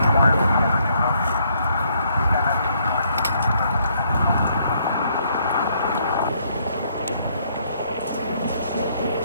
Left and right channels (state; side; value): inverted; both; correlation -0.69